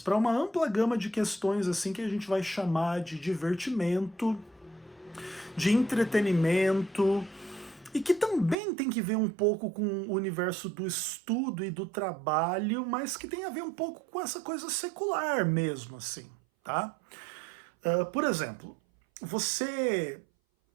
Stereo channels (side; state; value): left; drops out; at 8.6 s